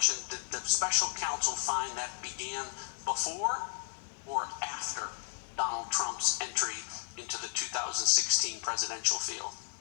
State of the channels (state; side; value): silent; right; digital silence